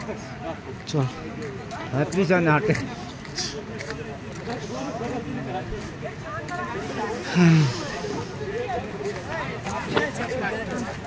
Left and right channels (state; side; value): identical; both; correlation 1.00